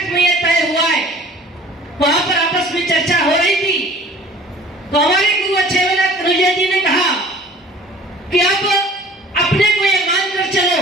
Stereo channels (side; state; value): both; normal; correlation 0.48